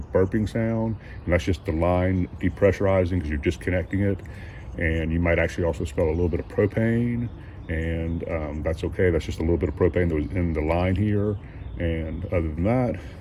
burping sound, and that's just the line depressurizing because you're disconnecting it. And you might actually also smell a little bit of propane, and that's okay. That's just a little bit of propane that was in the line here. And other than that,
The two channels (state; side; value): identical; both; correlation 1.00